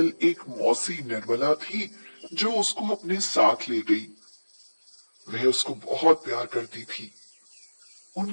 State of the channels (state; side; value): inverted; both; correlation -1.00